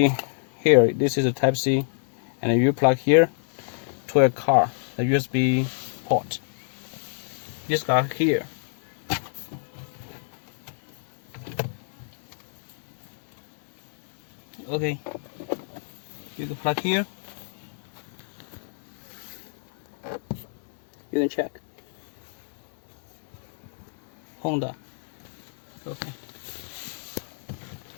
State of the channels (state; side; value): silent; right; digital silence